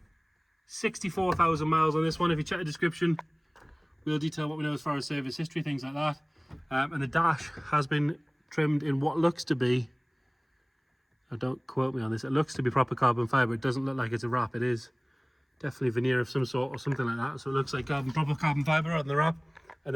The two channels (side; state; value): both; identical; correlation 1.00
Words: 64,000 miles on this one. If you check the description, we'll detail what we know as far as service history, things like that. And the dash has been trimmed in what looks to be, don't quote me on this, it looks to be proper carbon fibre. It doesn't look like it's a wrap. It is definitely veneer of some sort or something like that. So it looks like proper carbon fibre on the wrap. And